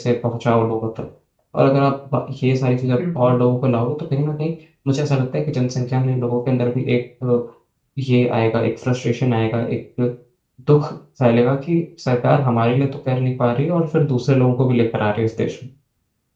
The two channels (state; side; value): identical; both; correlation 1.00